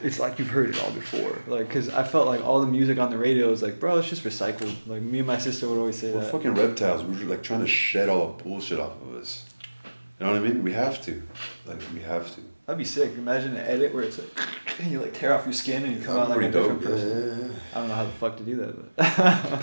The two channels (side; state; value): both; inverted; correlation -1.00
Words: It's like you've heard it all before. Like, cause I felt like all the music on the radio was like, bro, it's just recycled. Like me and my sister would always say We're that. fucking reptiles. We're like trying to shed all the bullshit off of us. You know what I mean? We have to. Like we have to. That'd be sick. Imagine an edit where it's like, and you like tear off your skin and you come out like a different person. Yeah. I don't know how the fuck to do that,